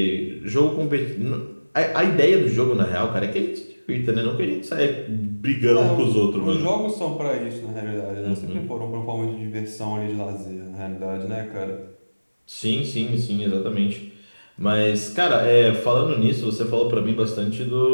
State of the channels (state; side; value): inverted; both; correlation -1.00